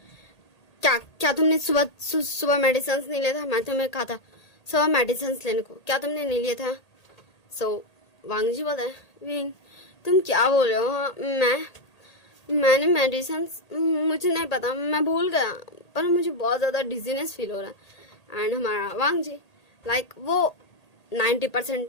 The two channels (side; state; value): right; late; 1.8 ms